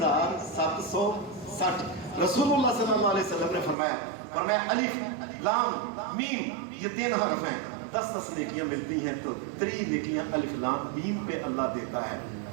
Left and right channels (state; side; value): drops out; left; at 3.8 s